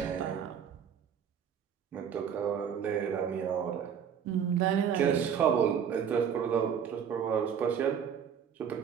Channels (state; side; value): quieter; left; 7.9 dB